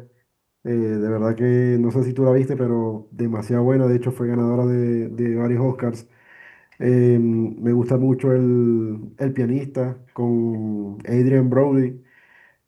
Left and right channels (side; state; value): both; identical; correlation 1.00